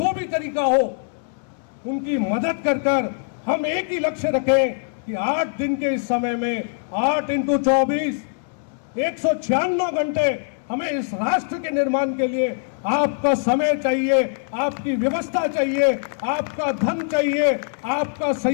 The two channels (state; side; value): silent; right; 64 dB below the other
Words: भी तरीका हो उनकी मदद कर हम एक ही लक्ष्य रखें कि 8 दिन के इस समय में 8 × 24 196 घंटे हमें इस राष्ट्र के निर्माण के लिए आपका समय चाहिए, आपकी व्यवस्था चाहिए, आपका धन चाहिए, आपका